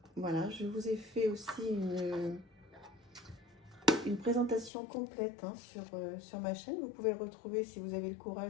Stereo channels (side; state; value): right; drops out; at 4.7 s